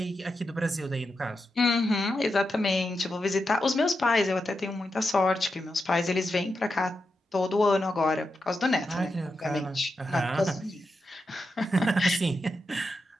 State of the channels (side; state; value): both; normal; correlation 0.87